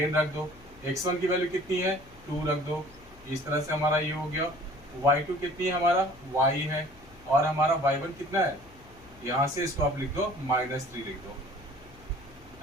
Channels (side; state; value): left; noise; hum, 23 dB below the sound